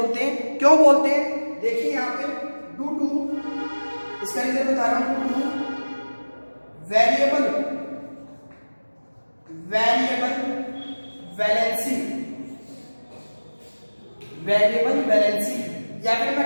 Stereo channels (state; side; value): inverted; both; correlation -1.00